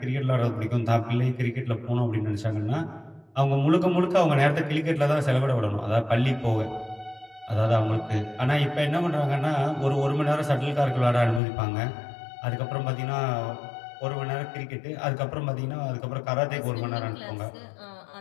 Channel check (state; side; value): drops out; right; at 11.4 s